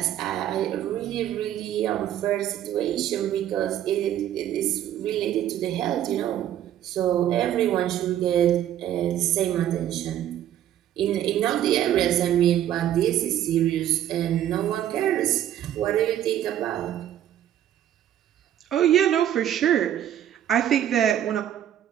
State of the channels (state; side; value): quieter; left; 11.3 dB